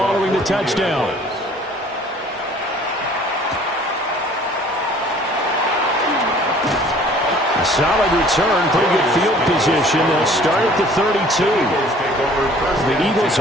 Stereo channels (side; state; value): both; normal; correlation 0.53